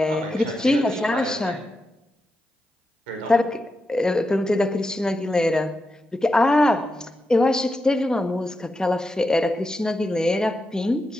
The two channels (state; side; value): normal; both; correlation 0.88